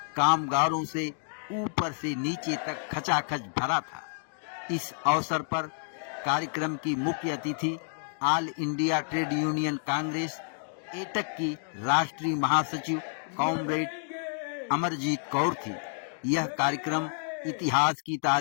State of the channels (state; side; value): silent; right; 58 dB below the other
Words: कामगारों से ऊपर से नीचे तक खचाखच भरा था। इस अवसर पर कार्यक्रम की मुख्य अतिथि all India trade union Congress AITUC की राष्ट्रीय महासचिव कॉमरेड अमरजीत कौर थी। यह कार्यक्रम इतिहास की